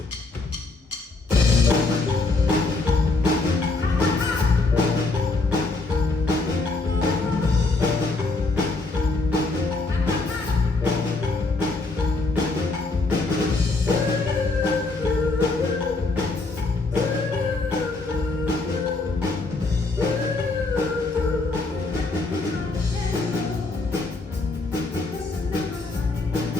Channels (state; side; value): quieter; right; 3.5 dB